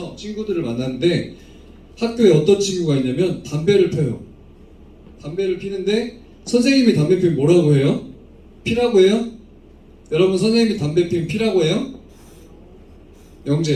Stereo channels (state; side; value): identical; both; correlation 1.00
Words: 친구들을 만났는데 학교에 어떤 친구가 있냐면 담배를 펴요. 담배를 피는데 선생님이 담배 피면 뭐라고 해요? 피라고 해요? 여러분, 선생님이 담배 피면 피라고 해요?